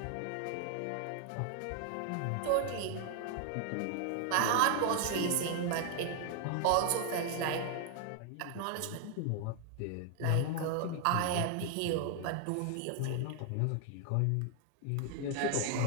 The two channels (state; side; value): different; both; correlation 0.00